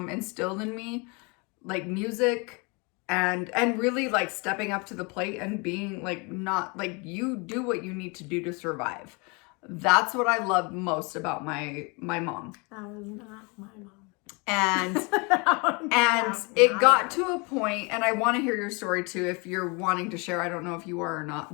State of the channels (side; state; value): right; quieter; 30.0 dB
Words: instilled in me, like music and really like stepping up to the plate and being like not like you do what you need to do to survive. That's what I love most about my mom. That was not my mom. And it got to a point, and I want to hear your story too if you're wanting to share. I don't know if you are or